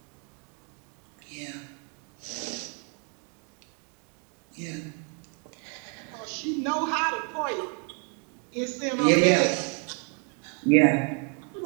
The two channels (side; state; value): left; quieter; 35.7 dB